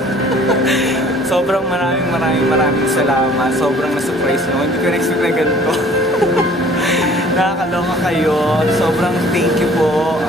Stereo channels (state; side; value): normal; both; correlation 0.53